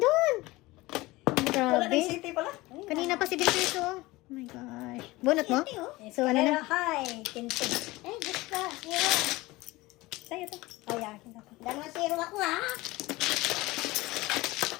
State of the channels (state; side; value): quieter; right; 20.4 dB